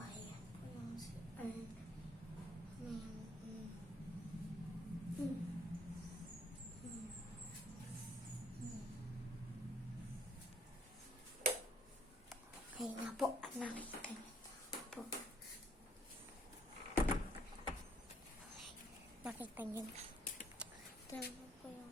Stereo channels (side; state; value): both; normal; correlation 0.64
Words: po yung CR. Okay nga po, nakita niyo po. Nakita niyo na. Ito naman po